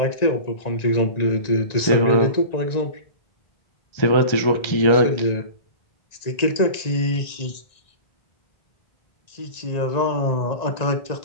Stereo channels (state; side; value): late; right; 1.9 ms